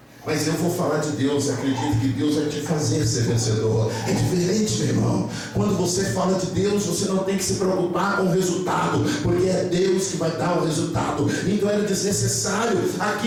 Mas eu vou falar de Deus, acredite que Deus vai te fazer ser vencedor. É diferente, meu irmão. Quando você fala de Deus, você não tem que se preocupar com o resultado, porque é Deus que vai dar o resultado. Então era desnecessário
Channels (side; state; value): both; identical; correlation 1.00